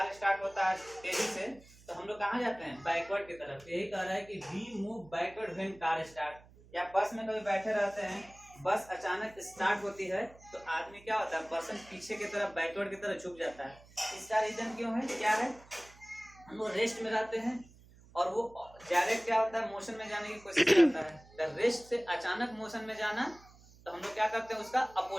स्टार्ट होता है तेजी से तो हम लोग कहाँ जाते हैं? बैकवर्ड की तरफ। यही कह रहा है कि we move backward when car start. या बस में कभी बैठे रहते हैं, बस अचानक स्टार्ट होती है तो आदमी क्या होता है? पर्सन पीछे की तरफ, बैकवर्ड की तरफ झुक जाता है। इसका रीजन क्यों है? क्या है? हम लोग रेस्ट में रहते हैं और वो डायरेक्ट क्या होता है, मोशन में जाने की कोशिश करता है। रेस्ट से अचानक मोशन में जाना तो हम लोग क्या करते हैं, उसका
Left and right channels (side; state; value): right; noise; hum, 24 dB below the sound